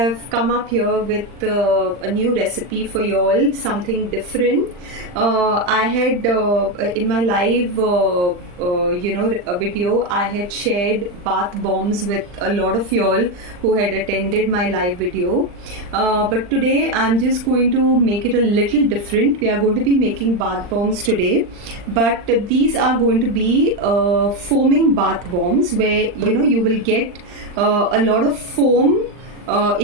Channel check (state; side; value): late; left; 39 ms